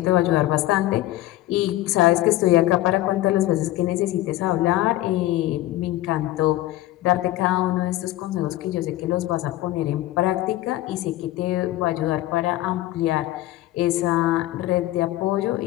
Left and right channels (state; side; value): quieter; right; 15.8 dB